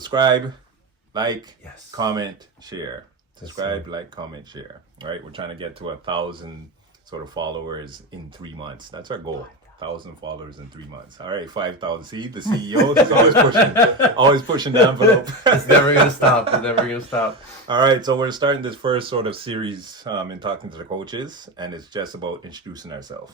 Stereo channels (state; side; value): normal; both; correlation 0.18